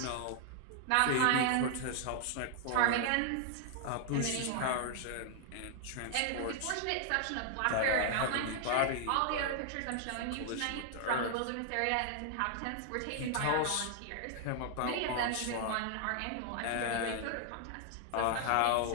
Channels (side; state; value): both; different; correlation 0.00